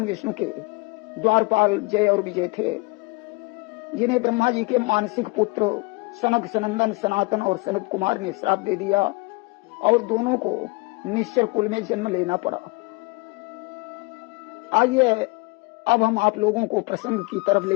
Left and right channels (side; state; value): right; quieter; 26.4 dB